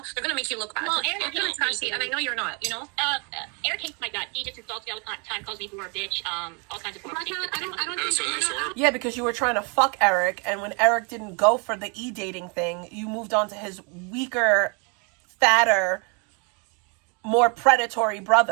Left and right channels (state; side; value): quieter; left; 34.4 dB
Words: gonna make you look bad. Well, They're Eric gonna hates trash me. you, and I know you're not. Eric hates my gut. He just insults me all the time, calls me whore, bitch, all kinds of horrible things. I don't think. Yeah, because you were trying to fuck Eric, and when Eric didn't go for the e-dating thing, you moved on to his weaker, fatter, more predatory